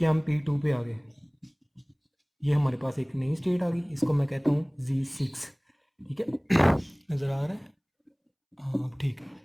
हम P2 पे आ गए। ये हमारे पास एक नई स्टेट आ गई, इसको मैं कहता हूँ Z6, ठीक है। नज़र आ रहा है, हाँ ठीक है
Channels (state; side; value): identical; both; correlation 1.00